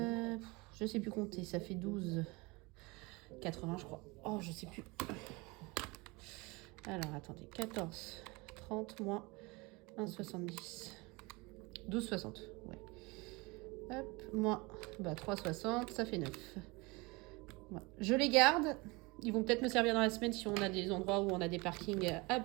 sais plus compter, ça fait 12,80, je crois. Oh, je sais plus. Alors, attendez. 14,30 moins 1,70. 12,60. Ouais. Hop, moins 3,60, ça fait 9. Ouais. Je les garde. Ils vont peut-être me servir dans la semaine si on a des endroits où on a des parkings à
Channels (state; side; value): quieter; left; 25.3 dB